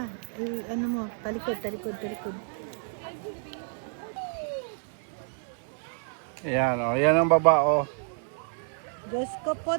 Ano mo? Talikod. Ayan, oh. Yan ang baba, oh. Diyos ko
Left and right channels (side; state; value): left; silent; 58 dB below the other